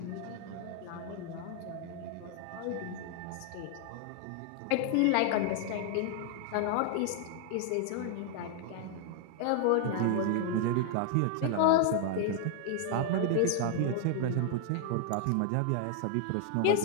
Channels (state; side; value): different; both; correlation 0.00